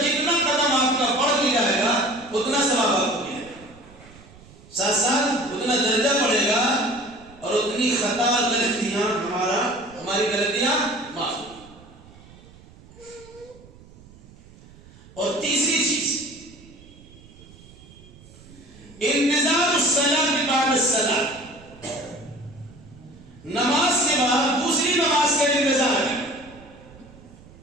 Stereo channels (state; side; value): noise; right; rumble, 22 dB below the sound